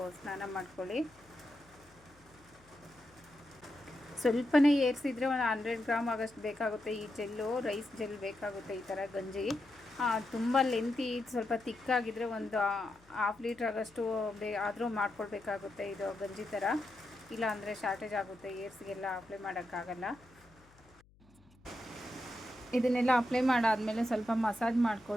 ಸ್ನಾನ ಮಾಡ್ಕೊಳ್ಳಿ. ಸ್ವಲ್ಪನೇ ಏರ್ಸಿದ್ರೆ ಒಂದು 100 ಗ್ರಾಮ್ ಆಗೋಷ್ಟು ಬೇಕಾಗುತ್ತೆ. ಈ ಜೆಲ್ಲು ರೈಸ್ ಜೆಲ್ ಬೇಕಾಗುತ್ತೆ. ಈ ಥರ ಗಂಜಿ ತುಂಬ ಲೆಂತಿ ಸ್ವಲ್ಪ ತಿಕ್ಕಾಗಿದ್ದರೆ ಒಂದು 1/2 ಲೀಟ್ರ್ ಆಗೋಷ್ಟು ಆದರೂ ಮಾಡ್ಕೊಳ್ಬೇಕಾಗುತ್ತೆ ಇದು ಗಂಜಿ ಥರ. ಇಲ್ಲ ಅಂದರೆ ಶಾರ್ಟೇಜ್ ಆಗುತ್ತೆ, ಏರ್ಸ್ಗೆಲ್ಲ ಅಪ್ಲೈ ಮಾಡೋಕ್ಕಾಗಲ್ಲ. ಇದನ್ನೆಲ್ಲ ಅಪ್ಲೈ ಮಾಡಾದಮೇಲೆ ಸ್ವಲ್ಪ ಮಸಾಜ್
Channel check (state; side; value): noise; left; hum, 28 dB below the sound